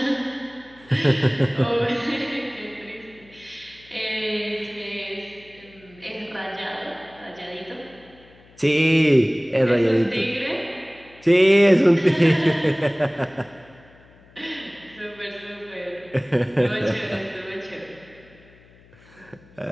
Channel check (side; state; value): left; noise; hum, 27 dB below the sound